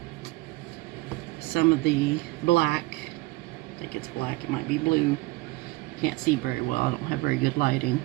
some of the black. I think it's black, it might be blue. Can't see very well, I don't have very good lighting.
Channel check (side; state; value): left; quieter; 21.3 dB